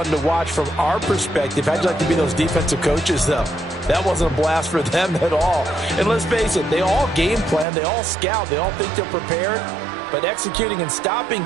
to watch from our perspective. How'd you like to be those defensive coaches, though? That wasn't a blast for them at all. And let's face it, they all game plan, they all scout, they all think they're prepared. But executing and stopping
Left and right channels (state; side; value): drops out; left; at 7.7 s